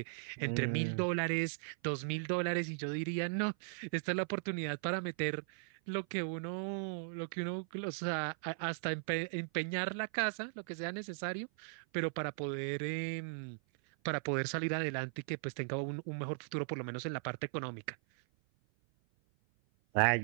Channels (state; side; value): silent; left; 52 dB below the other